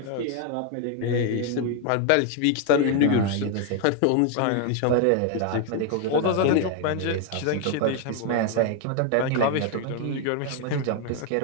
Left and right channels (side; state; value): both; different; correlation 0.01